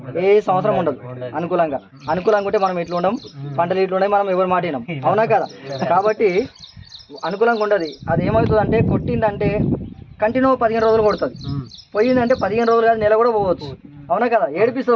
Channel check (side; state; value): both; identical; correlation 1.00